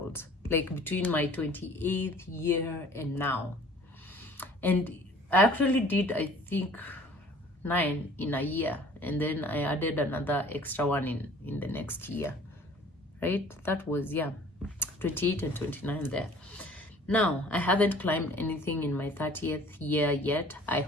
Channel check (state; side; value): normal; both; correlation 0.51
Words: like between my 28th year and now. And I actually did, I think, 9 in a year, and then I added another extra one in the next year, right? That was 28 and 29 there. Now, I haven't climbed anything in my 30th year yet. I